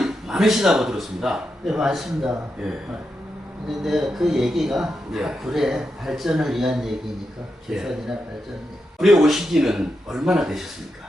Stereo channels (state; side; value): normal; both; correlation 0.86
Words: 많으시다고 들었습니다. 네, 맞습니다. 예. 근데 그 얘기가 예. 굴의 발전을 위한 얘기니까, 개선이나 발전. 굴에 오신 지는 얼마나